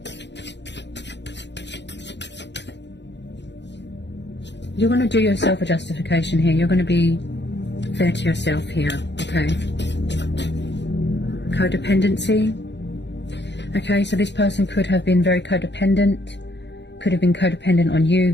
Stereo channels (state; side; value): late; right; 0.51 ms